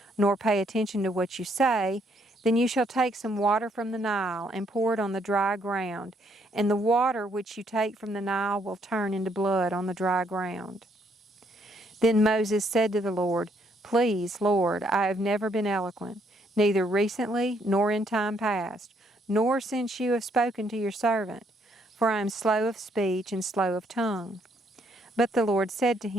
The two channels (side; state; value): both; normal; correlation 0.70